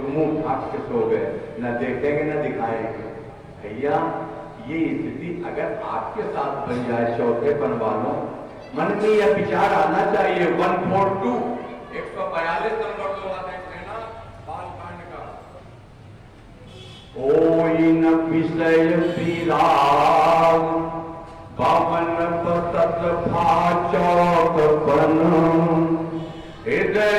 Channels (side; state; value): both; identical; correlation 1.00